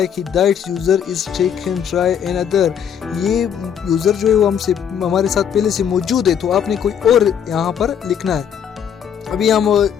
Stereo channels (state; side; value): quieter; right; 8.3 dB